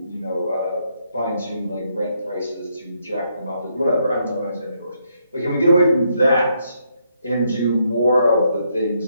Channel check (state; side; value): inverted; both; correlation -0.75